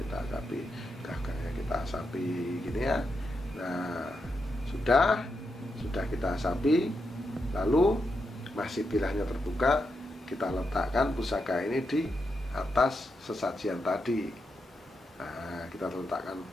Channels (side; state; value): both; normal; correlation 0.84